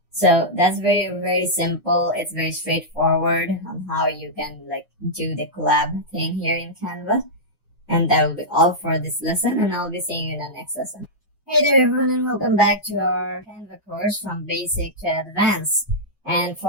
So that's very, very simple. It's very straightforward on how you can do the collab thing here in Canva. And that will be all for this lesson, and I'll be seeing you in the next lesson. Hey there everyone, and welcome back to our Canva course from basic to advanced. And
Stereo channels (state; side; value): normal; both; correlation -0.09